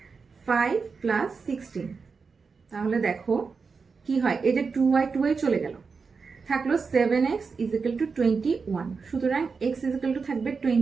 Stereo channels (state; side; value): quieter; left; 5.0 dB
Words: 5 plus 16। তাহলে দেখো কি হয়, এই যে 2y চলে গেল, থাকলো 7x ইজিক্যাল টু 21। সুতরাং x ইজিক্যাল টু থাকবে